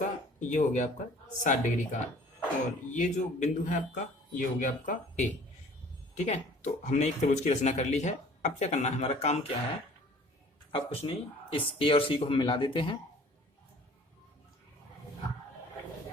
ये हो गया आपका 60 डिग्री का, और ये जो बिंदु है आपका, ये हो गया आपका A। ठीक है, तो हमने एक त्रिभुज की रचना कर ली है। अब क्या करना है, हमारा काम क्या है, अब कुछ नहीं, इस A और C को हम मिला देते हैं।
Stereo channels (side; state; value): both; normal; correlation 0.50